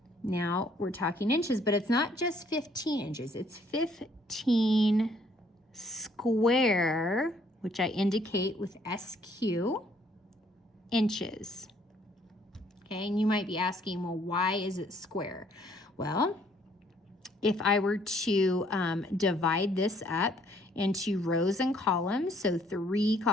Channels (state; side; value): normal; both; correlation 0.64